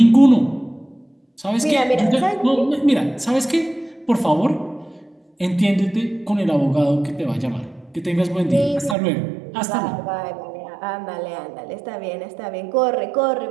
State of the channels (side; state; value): left; drops out; at 9.0 s